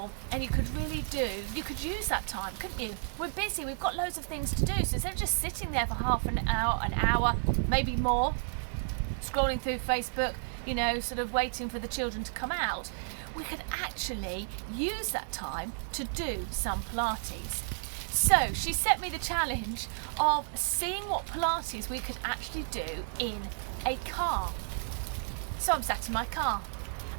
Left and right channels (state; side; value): silent; left; digital silence